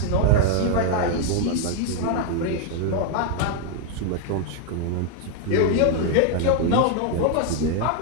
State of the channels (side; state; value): both; different; correlation 0.01